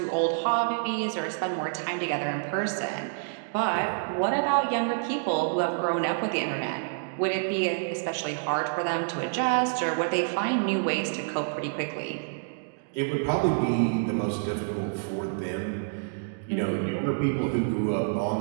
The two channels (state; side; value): silent; left; digital silence